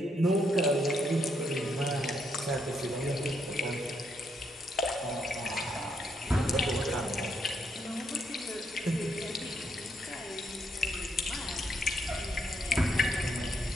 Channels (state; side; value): normal; both; correlation 0.76